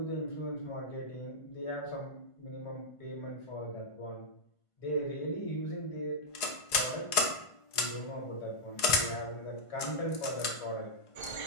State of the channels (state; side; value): late; right; 1.5 ms